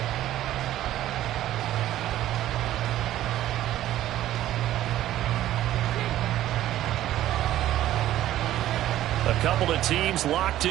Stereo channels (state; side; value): quieter; left; 13.4 dB